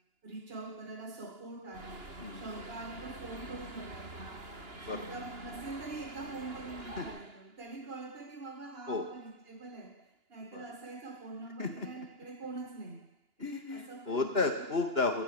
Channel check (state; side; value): late; left; 2.9 ms